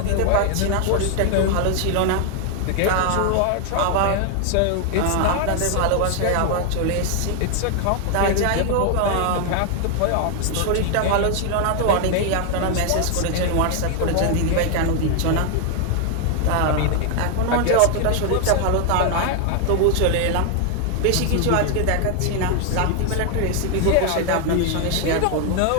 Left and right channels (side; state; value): both; different; correlation 0.00